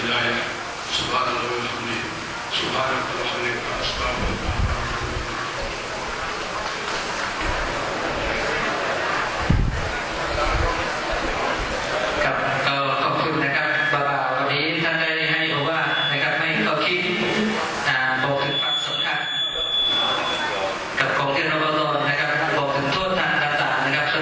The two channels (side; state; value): both; identical; correlation 1.00